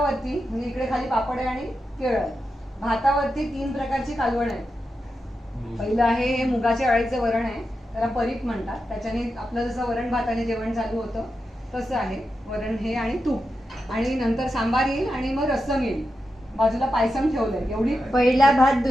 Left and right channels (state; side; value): normal; both; correlation 0.89